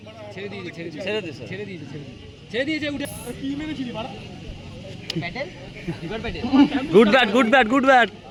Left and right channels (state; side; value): identical; both; correlation 1.00